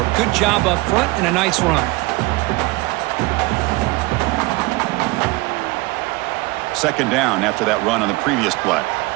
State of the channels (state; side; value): quieter; left; 22.7 dB